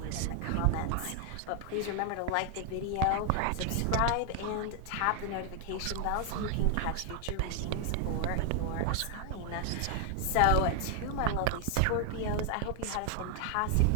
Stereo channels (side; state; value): both; different; correlation 0.00